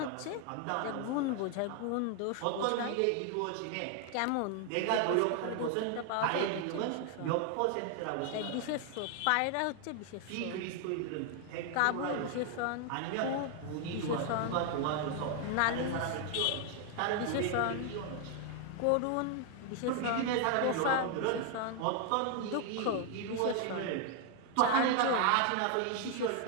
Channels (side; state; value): both; different; correlation 0.00